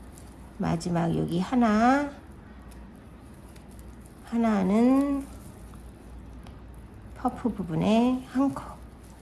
마지막 여기 하나는 퍼프 부분에 한 코,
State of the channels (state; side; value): identical; both; correlation 1.00